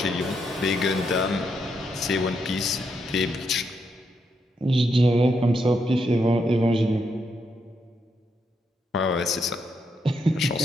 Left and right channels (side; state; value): both; normal; correlation 0.80